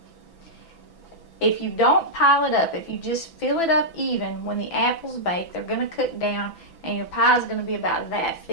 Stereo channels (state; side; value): late; right; 6.0 ms